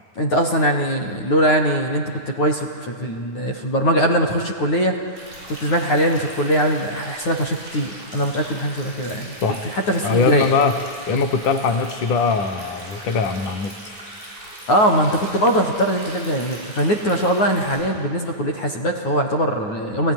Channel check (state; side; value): late; right; 9.5 ms